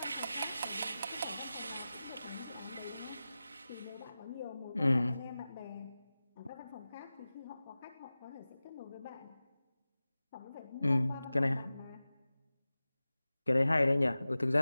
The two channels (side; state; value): both; inverted; correlation -0.96